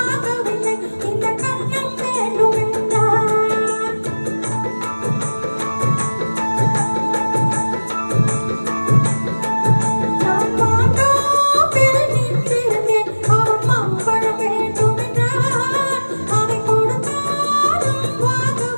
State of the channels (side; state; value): both; inverted; correlation -1.00